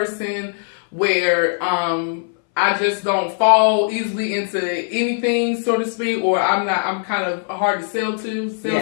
where I just don't fall easily into anything, so to speak, or I'm kind of hard to sell Yes.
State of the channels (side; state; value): right; silent; 63 dB below the other